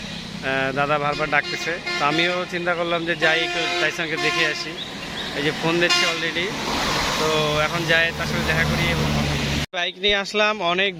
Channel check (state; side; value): identical; both; correlation 1.00